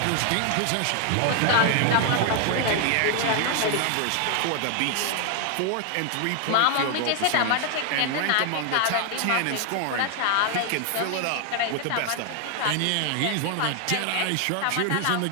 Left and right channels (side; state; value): both; different; correlation 0.00